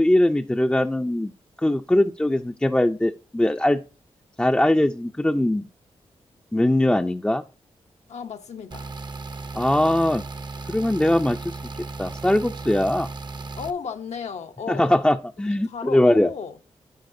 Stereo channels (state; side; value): normal; both; correlation 0.97